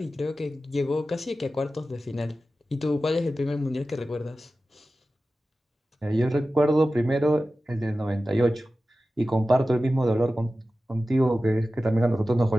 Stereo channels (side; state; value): both; normal; correlation 0.94